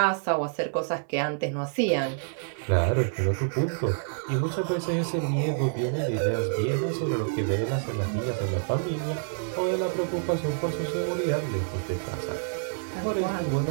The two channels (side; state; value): left; silent; 59 dB below the other